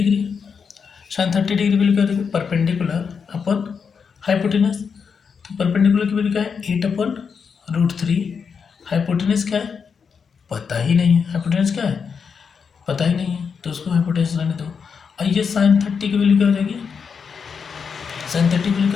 Sine 30 degree value क्या होती है? Perpendicular upon hypotenuse. तो परपेंडिकुलर की वैल्यू क्या है? 8/√3। हाइपोटेनस क्या है? पता ही नहीं है। हाइपोटेनस क्या है? पता ही नहीं है, तो उसको हाइपोटेनस रहने दो। और ये साइन 30 की वैल्यू क्या हो जाएगी? साइन 30 की वैल्यू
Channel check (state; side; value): quieter; right; 6.1 dB